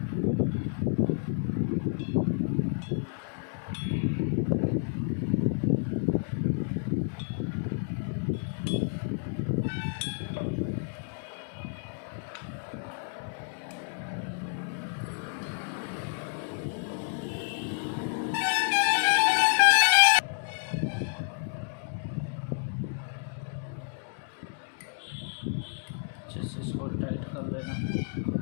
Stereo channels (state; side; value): silent; right; 58 dB below the other